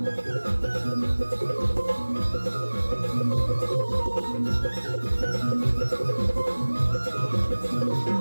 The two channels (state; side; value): inverted; both; correlation -1.00